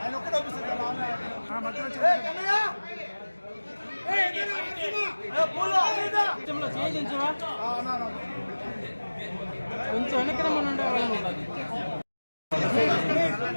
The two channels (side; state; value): both; inverted; correlation -1.00